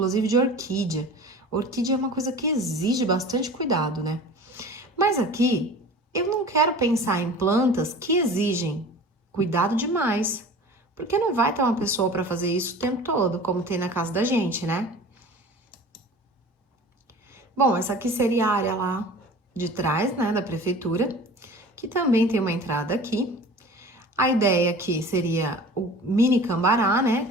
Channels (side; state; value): both; normal; correlation 0.40